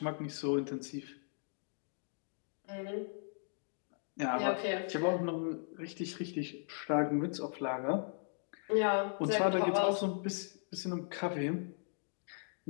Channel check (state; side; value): silent; right; digital silence